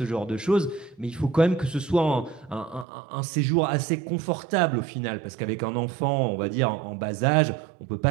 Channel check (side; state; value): left; drops out; at 2.9 s